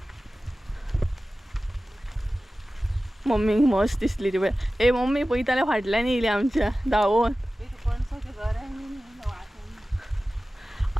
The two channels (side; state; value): both; normal; correlation 0.96